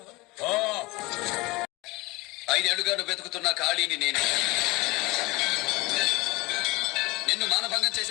5 ఏళ్లుగా నువ్వు వెతుకుతున్న ఖాళీని నేనే. నిన్ను మానభంగం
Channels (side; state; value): right; quieter; 22.9 dB